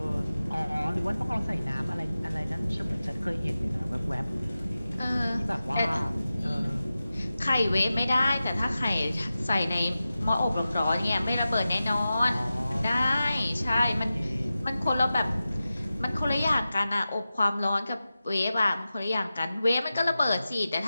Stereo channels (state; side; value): inverted; both; correlation -0.94